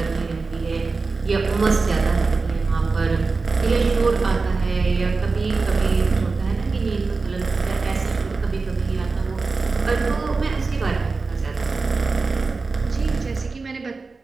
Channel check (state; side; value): quieter; left; 4.1 dB